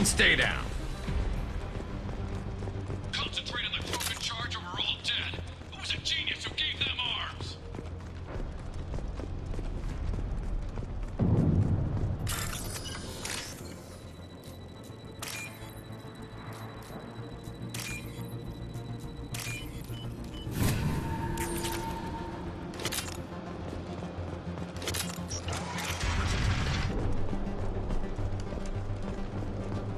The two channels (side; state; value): both; identical; correlation 1.00